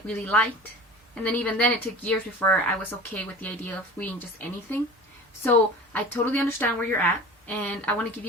really liked, and then even then it took years before I was okay with the idea of reading just anything. So I totally understand where you're at, and I want to give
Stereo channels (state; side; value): normal; both; correlation 0.38